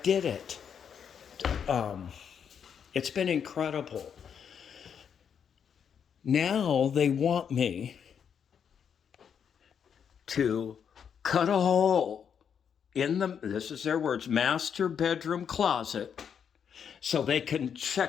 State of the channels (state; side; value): quieter; right; 7.6 dB